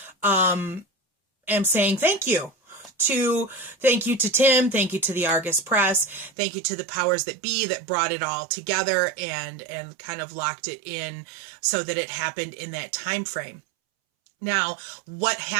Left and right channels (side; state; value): left; drops out; at 6.3 s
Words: am saying thank you to. Thank you to Tim. Thank you to the Argus Press. Thank you to the powers that be that brought it all together and kind of locked it in so that it happened in that time frame. Now, what